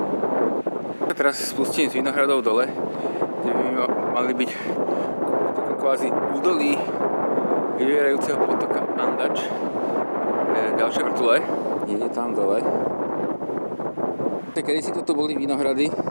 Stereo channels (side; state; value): both; inverted; correlation -1.00